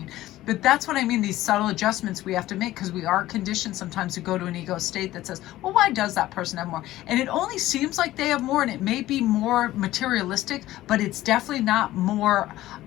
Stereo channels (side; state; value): right; quieter; 15.5 dB